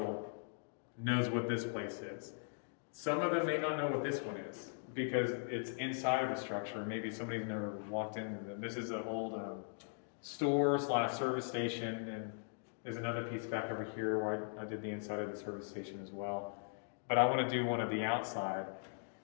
knows what this place is. Some of them may not know what this one is because it's inside of a structure. Maybe somebody's never walked in. This is an old store/service station, and there's another piece back over here where I did the inside of the service station as well. But I want to do one of the outside.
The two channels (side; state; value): right; silent; digital silence